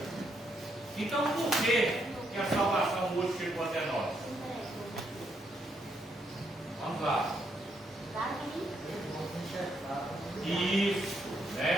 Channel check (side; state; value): both; normal; correlation 0.76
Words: Então, por que a salvação hoje chegou até nós? Vamos lá. Isso,